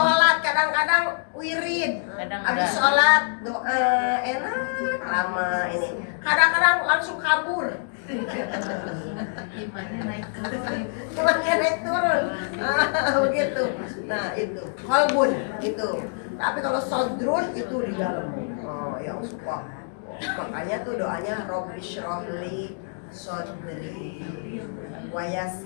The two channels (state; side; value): silent; right; digital silence